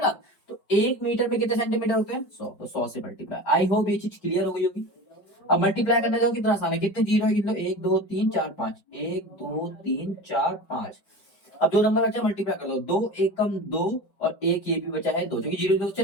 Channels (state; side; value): late; right; 4.9 ms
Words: तो 1 मीटर में कितने सेंटीमीटर होते हैं, 100, तो 100 से मल्टीप्लाई। आई होप ये चीज क्लियर हो गई होगी। अब मल्टीप्लाई करने जाओ कितना आसान है, कितने जीरो है, कितने, 1 2 3 4 5, 1 2 3 4 5। अब जो नंबर बचा मल्टीप्लाई कर दो, 2 एकम 2 और एक ये भी बचा है 2, क्योंकि जीरो जीरो